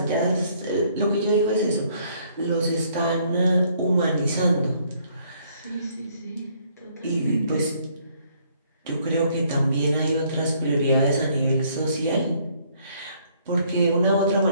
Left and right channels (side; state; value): both; inverted; correlation -0.65